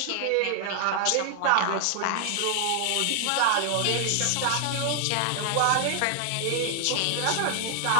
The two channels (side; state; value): both; different; correlation 0.00